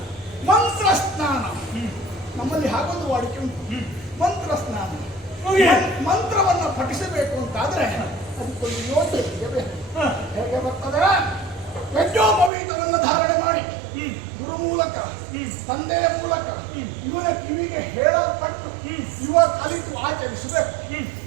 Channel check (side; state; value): left; drops out; at 12.5 s